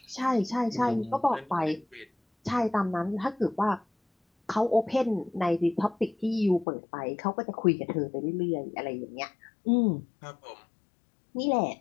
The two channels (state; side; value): drops out; right; at 6.7 s